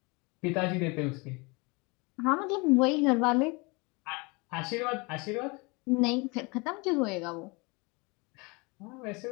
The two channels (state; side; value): quieter; right; 27.8 dB